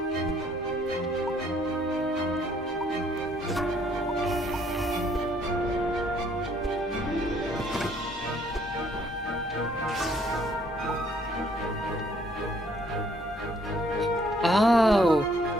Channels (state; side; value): normal; both; correlation 0.64